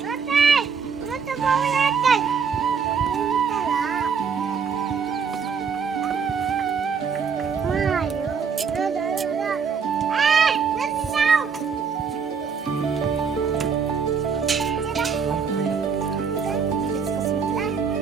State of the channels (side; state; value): left; quieter; 6.1 dB